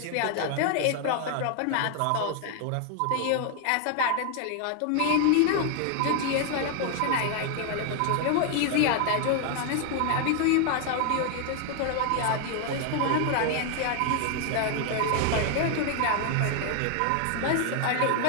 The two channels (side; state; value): both; different; correlation 0.00